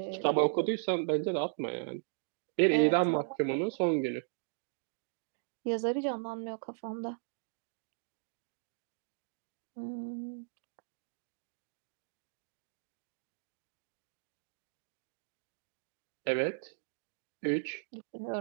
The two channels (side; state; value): left; silent; digital silence